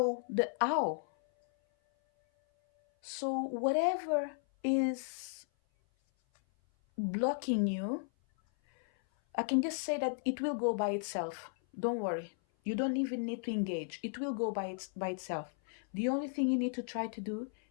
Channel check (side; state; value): right; silent; 55 dB below the other